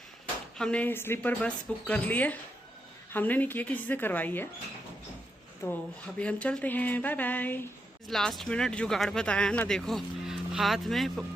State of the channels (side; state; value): both; normal; correlation 0.83